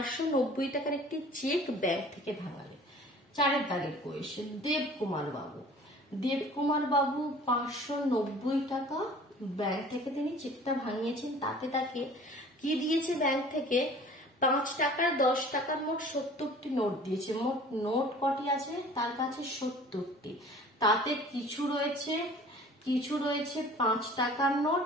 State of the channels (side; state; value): both; normal; correlation 0.47